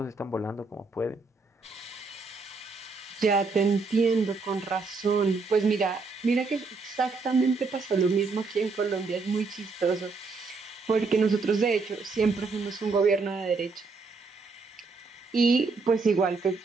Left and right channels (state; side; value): quieter; left; 4.2 dB